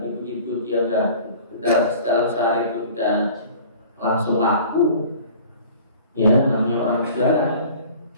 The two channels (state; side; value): inverted; both; correlation -0.46